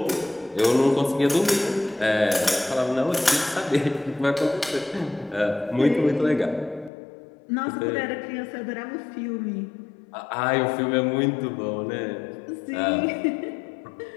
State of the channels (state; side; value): drops out; right; at 6.9 s